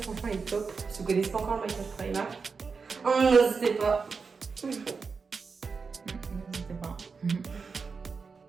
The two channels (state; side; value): quieter; left; 5.0 dB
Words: Franchement, elle est top. Si vous connaissez pas encore le maquillage Primark, n'hésitez pas. N'hésitez pas.